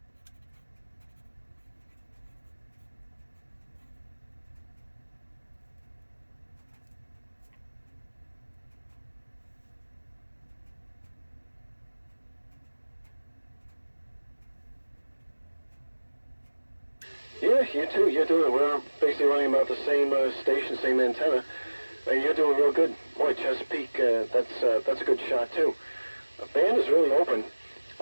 Yeah, you too. You're doing it. We're basically running about the same station, same antenna, and you're doing real good. Boy, Chesapeake, that's a good shot too. The band is really open.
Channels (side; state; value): both; inverted; correlation -1.00